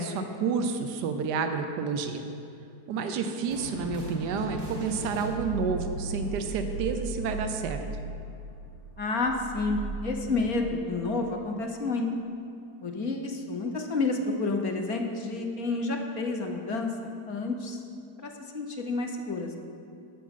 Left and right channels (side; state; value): left; late; 5.0 ms